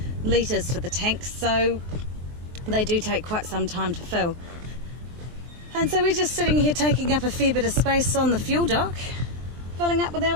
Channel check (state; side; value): late; left; 23 ms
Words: litres for the tanks, so they do take quite some time to fill. And so we're just sitting here taking up a fair bit of space on the fuel dock, filling up with our